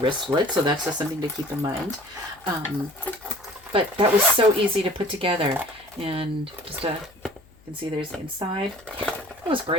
So that's just something to keep in mind. But that was so easy to put together. And just you can see there's the inside. It was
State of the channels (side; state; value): left; noise; hum, 27 dB below the sound